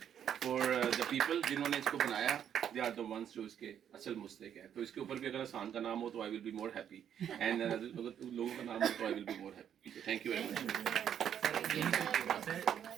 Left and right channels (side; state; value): left; quieter; 9.2 dB